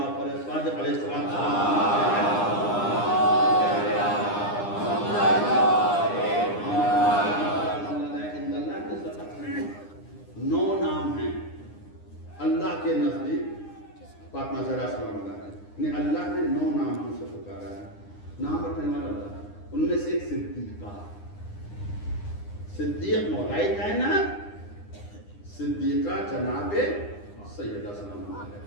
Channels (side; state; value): right; late; 9.8 ms